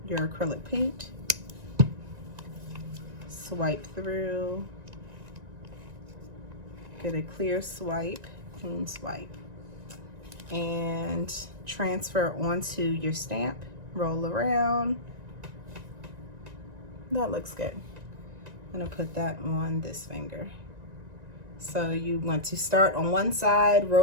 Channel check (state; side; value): late; left; 1.9 ms